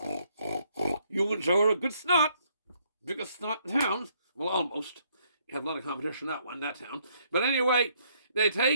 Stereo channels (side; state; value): both; inverted; correlation -0.69